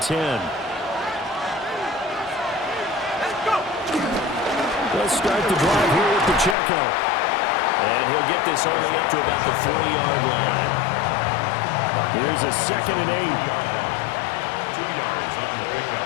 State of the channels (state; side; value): drops out; right; at 6.6 s